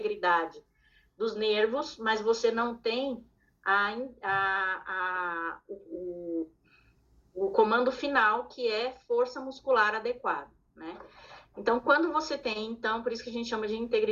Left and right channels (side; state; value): both; identical; correlation 1.00